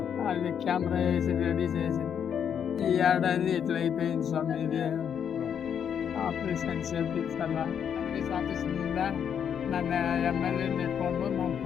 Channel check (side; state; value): right; quieter; 8.2 dB